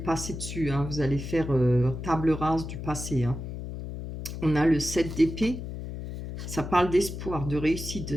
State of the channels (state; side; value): noise; left; hum, 8 dB below the sound